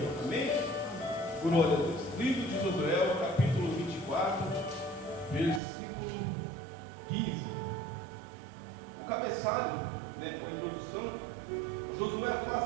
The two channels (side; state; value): left; drops out; at 5.6 s